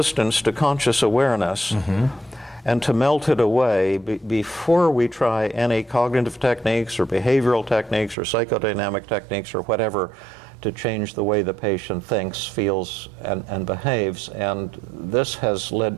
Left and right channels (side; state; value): left; drops out; at 8.2 s